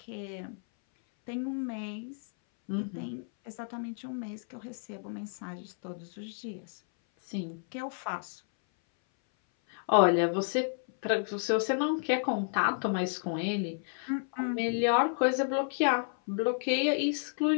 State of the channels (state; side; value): silent; right; 57 dB below the other